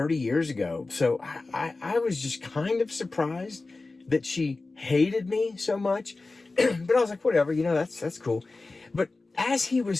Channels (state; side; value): quieter; right; 3.5 dB